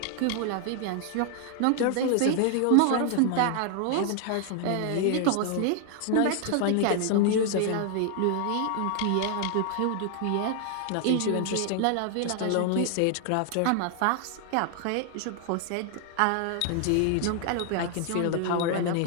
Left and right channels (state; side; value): different; both; correlation 0.00